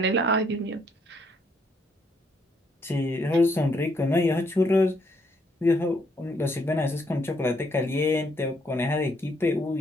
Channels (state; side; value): normal; both; correlation 0.71